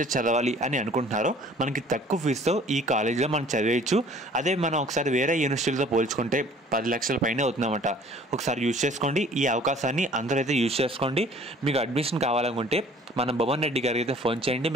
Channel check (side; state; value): both; normal; correlation 0.52